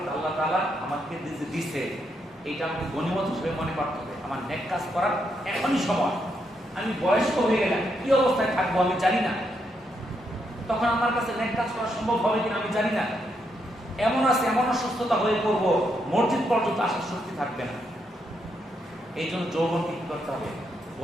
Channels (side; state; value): both; normal; correlation 0.79